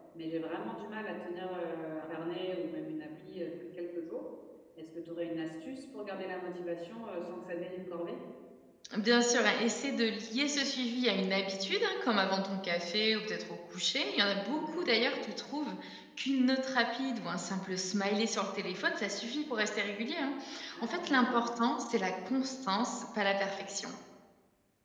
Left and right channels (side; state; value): both; identical; correlation 1.00